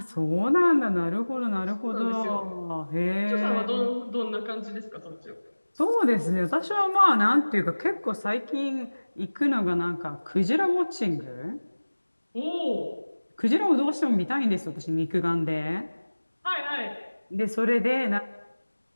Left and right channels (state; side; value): inverted; both; correlation -1.00